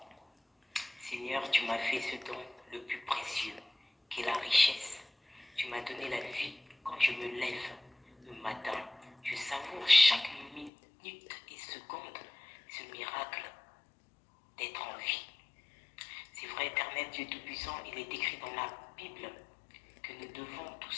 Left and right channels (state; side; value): drops out; right; at 10.7 s